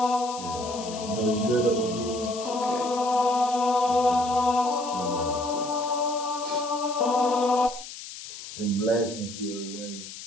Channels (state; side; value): noise; left; hiss, 12 dB below the sound